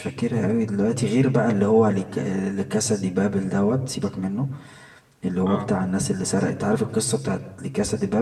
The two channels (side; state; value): both; identical; correlation 1.00